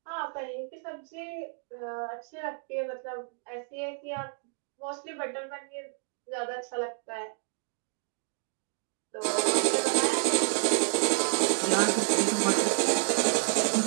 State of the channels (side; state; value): left; silent; 58 dB below the other